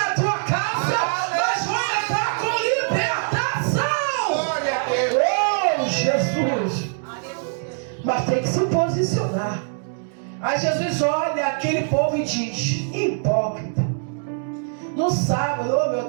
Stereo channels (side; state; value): left; silent; digital silence